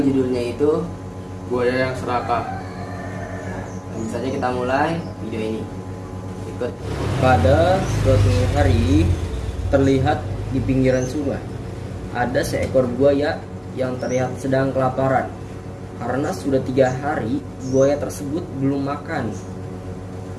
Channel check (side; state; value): both; identical; correlation 1.00